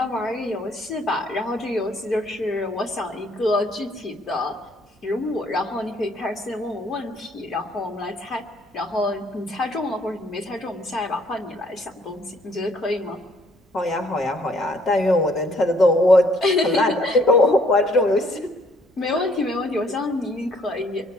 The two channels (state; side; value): normal; both; correlation 0.64